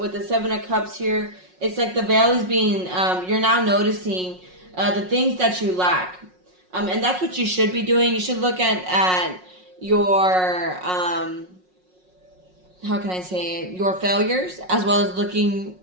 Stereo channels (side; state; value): left; late; 5.5 ms